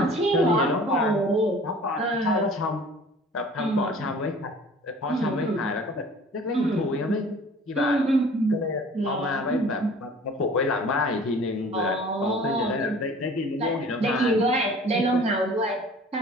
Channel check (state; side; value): normal; both; correlation 0.47